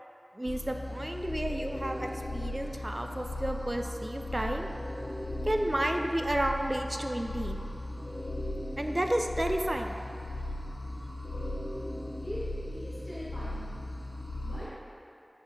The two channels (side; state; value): both; normal; correlation 0.97